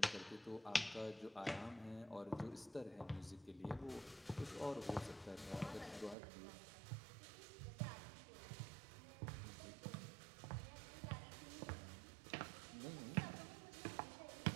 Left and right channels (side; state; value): left; drops out; at 6.2 s